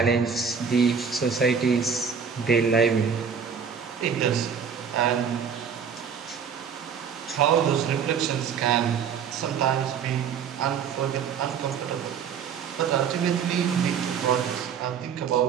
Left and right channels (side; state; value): left; quieter; 6.9 dB